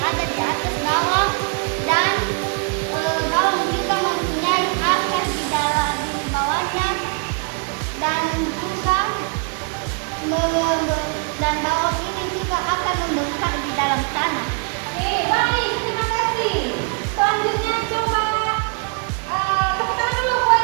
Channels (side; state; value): left; quieter; 38.0 dB